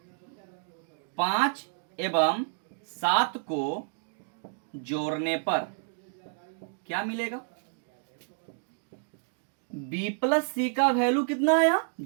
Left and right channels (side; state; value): left; silent; digital silence